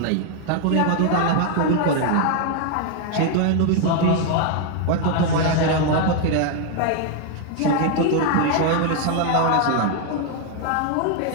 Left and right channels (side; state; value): both; different; correlation 0.00